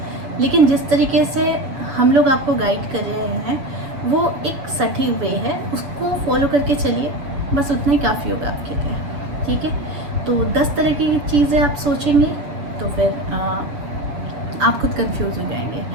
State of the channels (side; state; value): left; late; 7.1 ms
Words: लेकिन जिस तरीके से हम लोग आपको गाइड कर रहे हैं वो एक सटीक वे है, उसको फॉलो करके चलिए, बस उतना ही काफ़ी होगा आपके लिए। ठीक है। तो 10 तरह की चीज़ें आप सोचेंगे तो फिर आप खुद कंफ्यूज हो जाएंगे।